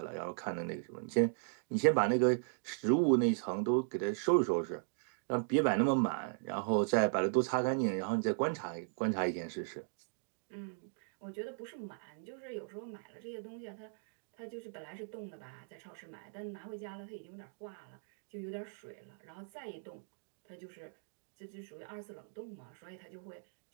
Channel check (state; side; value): silent; left; digital silence